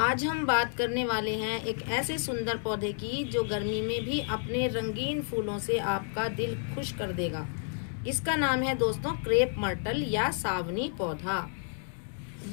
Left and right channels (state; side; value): silent; right; digital silence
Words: हम बात करने वाले हैं एक ऐसे सुंदर पौधे की जो गर्मी में भी अपने रंगीन फूलों से आपका दिल खुश कर देगा। इसका नाम है दोस्तों क्रेप मर्टल या सावनी पौधा।